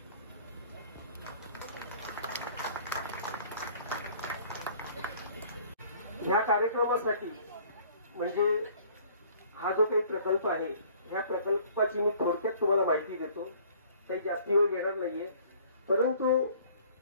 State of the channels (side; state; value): both; inverted; correlation -0.54